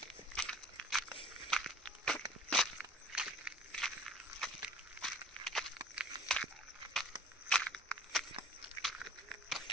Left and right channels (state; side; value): normal; both; correlation 0.50